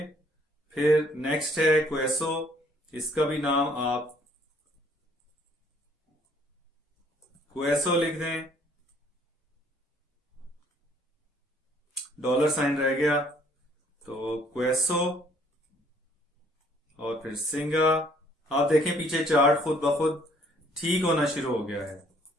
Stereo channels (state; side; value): normal; both; correlation 0.62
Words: फिर नेक्स्ट है क्वेसो, इसका भी नाम आप क्वेसो लिख दें, $साइन रह गया तो क्वेसो, और फिर सिंगा। आप देखें पीछे चार्ट खुद ब खुद ठीक होना शुरू हो गया है।